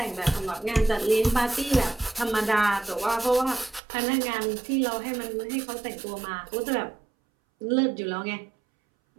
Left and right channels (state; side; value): drops out; left; at 3.8 s